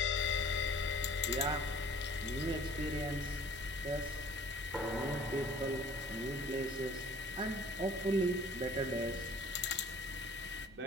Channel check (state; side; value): normal; both; correlation 0.51